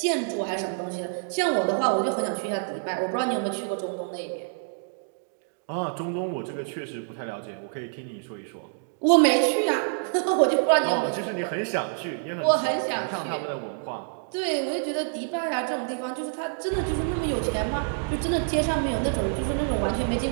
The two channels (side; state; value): left; silent; digital silence